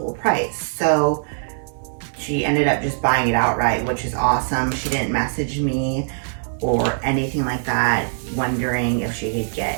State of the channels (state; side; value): silent; left; 59 dB below the other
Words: price. So she ended up just buying it outright, which is awesome. She didn't message me or anything like that, wondering if she could